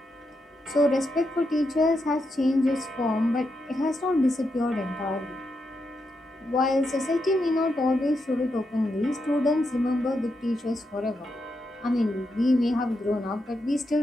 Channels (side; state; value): both; normal; correlation 0.84